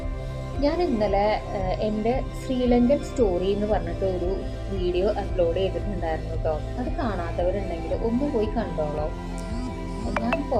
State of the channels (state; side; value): identical; both; correlation 1.00